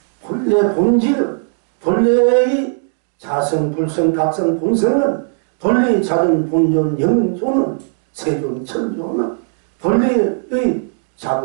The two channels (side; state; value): left; silent; digital silence